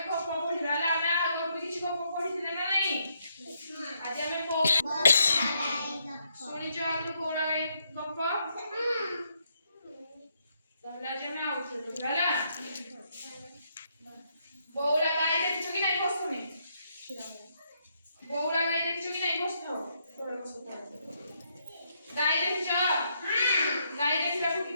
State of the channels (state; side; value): inverted; both; correlation -0.76